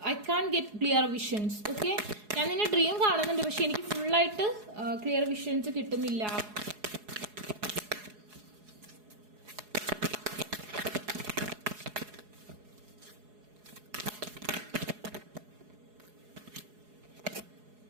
get clear visions. Okay, ഞാൻ നിന്നെ ഡ്രീം കാണുന്നുണ്ട്, പക്ഷെ എനിക്ക് ഫുള്ളായിട്ട് clear visions കിട്ടുന്നില്ല.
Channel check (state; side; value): late; left; 4.8 ms